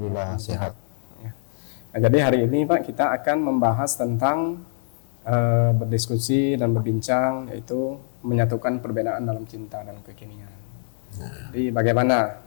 sehat. Nah, jadi hari ini Pak kita akan membahas tentang berdiskusi dan berbincang, yaitu menyatukan perbedaan dalam cinta dan kekinian. Jadi bagaimana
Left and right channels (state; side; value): silent; right; 63 dB below the other